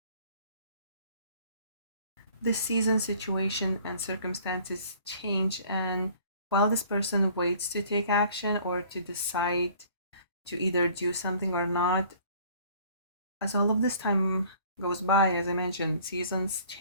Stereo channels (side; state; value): both; inverted; correlation -0.53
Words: The season, situation, and circumstances change, and while this person waits to take action or to decide to either do something or not, as all of this time goes by, as I mentioned, seasons